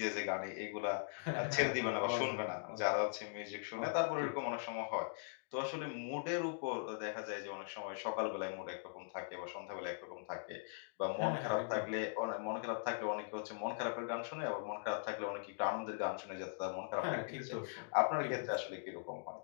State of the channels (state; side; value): silent; right; digital silence